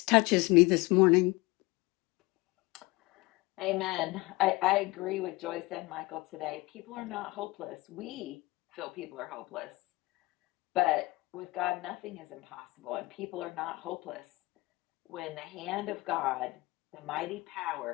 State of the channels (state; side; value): quieter; right; 22.1 dB